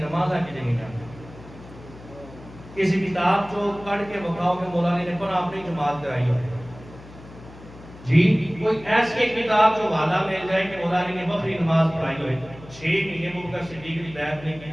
نمازاں کی نہیں جاتی. کسی کتاب جو پڑھ کے بتاؤ کہ مولا علی نے پر اپنی جماعت کرائی ہو جی, کوئی ایسی کتاب جو حوالہ مل جائے کہ مولا علی نے بکری نماز پڑھائی ہوئے 6 مہینے ابوبکر صدیق کی بیعت نہیں کی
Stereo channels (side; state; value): left; noise; hum, 18 dB below the sound